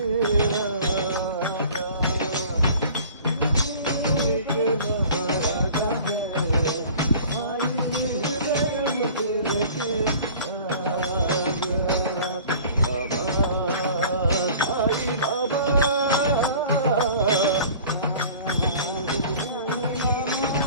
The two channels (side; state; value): both; inverted; correlation -0.45